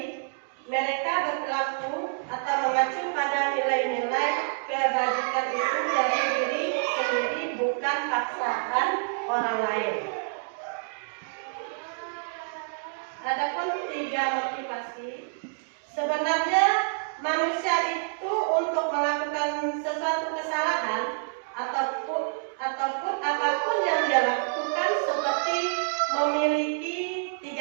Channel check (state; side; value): silent; left; digital silence